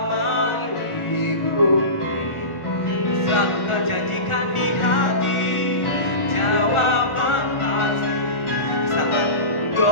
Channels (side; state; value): right; late; 1.4 ms